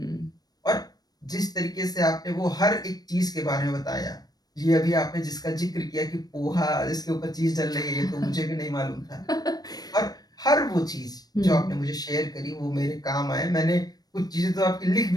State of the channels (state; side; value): late; right; 0.19 ms